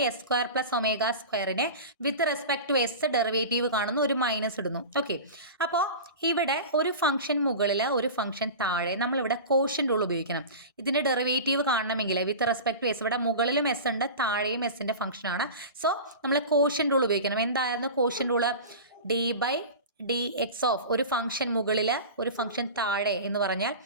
+ ω²നെ with respect to s derivative കാണുന്നു, ഒരു മൈനസ് ഇടുന്നു. ഓക്കെ, അപ്പോൾ ഇവിടെ ഒരു ഫംഗ്ഷൻ മുകളിൽ ഒരു ഫംഗ്ഷൻ താഴെ നമ്മളിവിടെ കോഷ്യൻ്റ് റൂൾ ഉപയോഗിക്കണം. ഇതിൻ്റെ ഡെറിവേറ്റീവ് കാണണമെങ്കിൽ വിത്ത് റെസ്പെക്ട് ടു s, ഇവിടെ മുകളിലും s ഉണ്ട് താഴെയും s-ൻ്റെ ഫംഗ്ഷനാണ്. സോ നമ്മൾ കോഷ്യൻ്റ് റൂൾ ഉപയോഗിക്കണം. എന്തായിരുന്നു quotient rule? D by d x of ഒരു ഫംഗ്ഷൻ മുകളിൽ ഒരു ഫംഗ്ഷൻ താഴെ എന്ന് പറഞ്ഞാൽ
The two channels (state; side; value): inverted; both; correlation -0.31